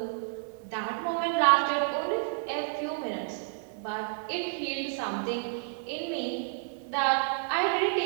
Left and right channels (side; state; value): left; silent; digital silence